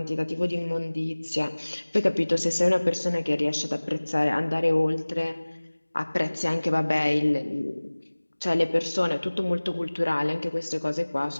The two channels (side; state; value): both; inverted; correlation -1.00